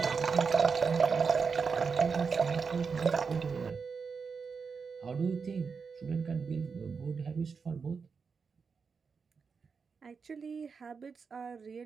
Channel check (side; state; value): left; quieter; 5.4 dB